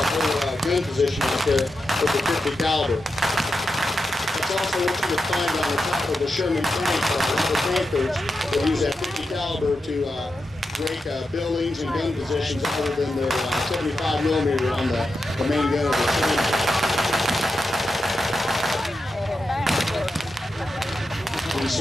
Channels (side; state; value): both; normal; correlation 0.88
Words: gun position out there with the 50 caliber. That's also what you would find on the top of the Sherman tank. A lot of tankers that use that 50 caliber to break buildings and gun positions other than their 75 millimeter on the main gun of the tank. You can